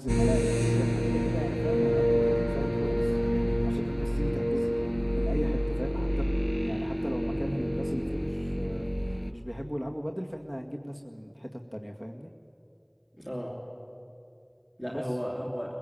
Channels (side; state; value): both; identical; correlation 1.00